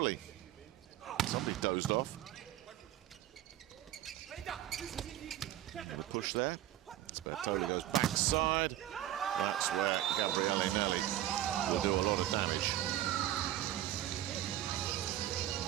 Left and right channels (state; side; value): quieter; left; 12.8 dB